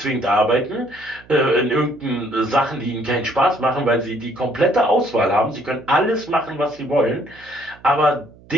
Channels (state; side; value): noise; right; hum, 25 dB below the sound